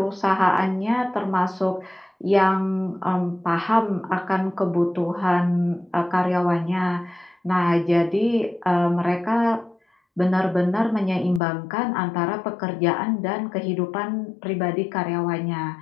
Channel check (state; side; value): drops out; right; at 11.4 s